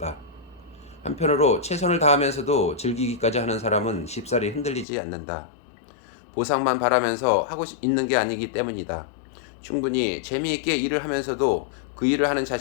한편으로 최선을 다하면서도 즐기기까지 하는 사람은 쉽사리 흔들리지 않는다. 보상만 바라면서 하고 있는 게 아니기 때문이다. 충분히 재미있게 일을 하면서도 그 일을 하는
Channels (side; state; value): right; drops out; at 4.9 s